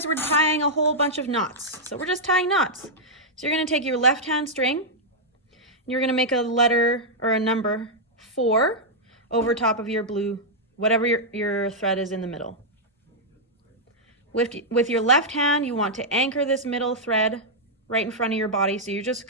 we're tying a whole bunch of knots. So we're just tying knots. So you're going to take your left hand string, and you're going to make a letter or a number 4 over top of your blue, whatever your thread is in the middle. With your left hand, you want to anchor this middle thread right in front of your body. So you're just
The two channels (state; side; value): normal; both; correlation -0.06